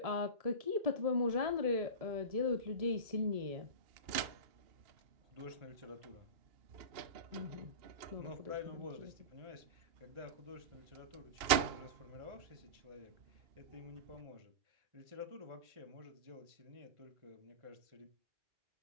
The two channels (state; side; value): late; left; 2.8 ms